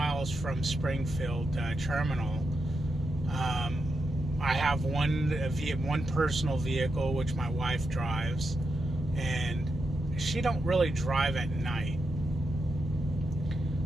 from Springfield Terminal. I have one personal vehicle, which my wife drives, and she don't really drive at night.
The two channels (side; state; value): both; normal; correlation 0.85